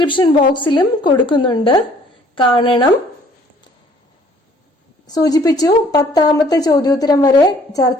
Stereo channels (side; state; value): both; normal; correlation 0.58